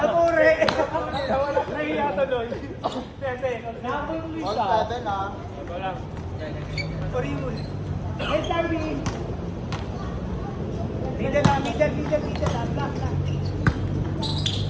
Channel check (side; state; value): both; identical; correlation 1.00